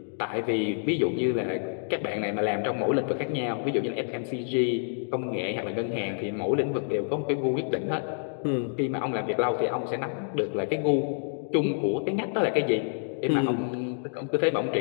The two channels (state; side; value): silent; right; digital silence